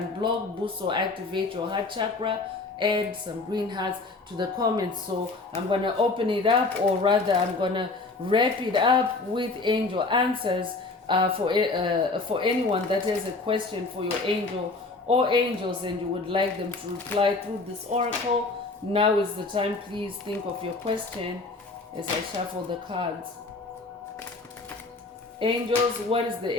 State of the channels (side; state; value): right; quieter; 3.6 dB